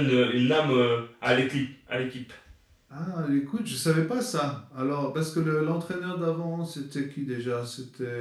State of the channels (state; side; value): identical; both; correlation 1.00